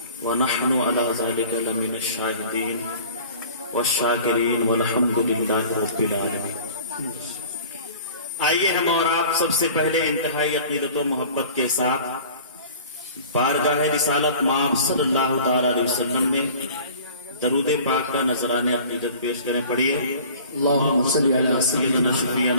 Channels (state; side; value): inverted; both; correlation -0.45